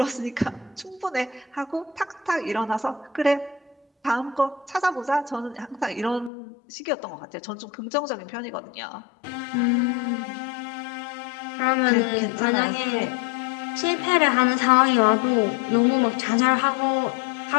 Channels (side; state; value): right; drops out; at 6.3 s